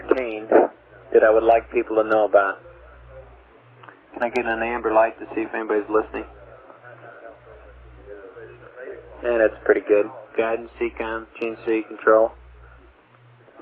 that I would like people to know about. Can I get an amber light to see if anybody's listening? Yeah, that's pretty good. Guidance, CCOM, GNC, control.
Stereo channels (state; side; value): identical; both; correlation 1.00